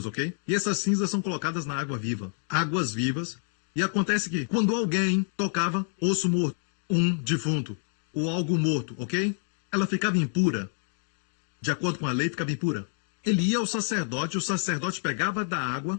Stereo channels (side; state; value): right; silent; 58 dB below the other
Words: ok? E essas cinzas são colocadas na água viva. Águas vivas. E acontece que quando alguém tocava osso morto, um defunto, ou algo morto, ok? Ela ficava impura. De acordo com a lei, ficava impura. Ele ia ao sacerdote, o sacerdote pegava da água,